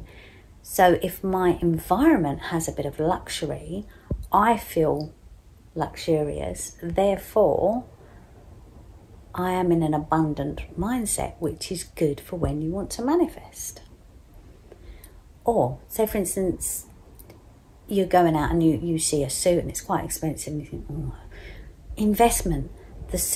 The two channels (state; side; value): identical; both; correlation 1.00